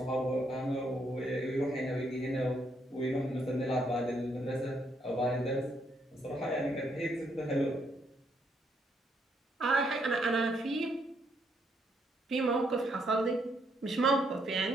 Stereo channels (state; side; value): normal; both; correlation 0.74